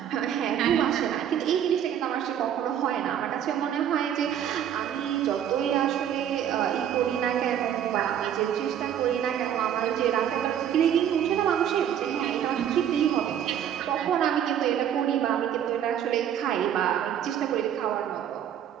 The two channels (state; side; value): quieter; left; 9.7 dB